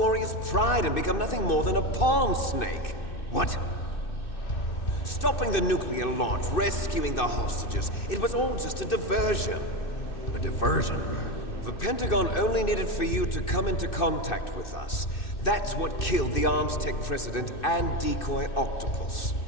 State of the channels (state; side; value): late; right; 2.6 ms